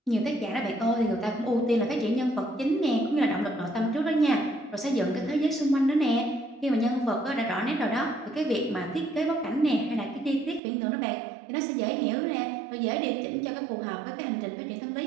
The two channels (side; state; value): left; drops out; at 10.6 s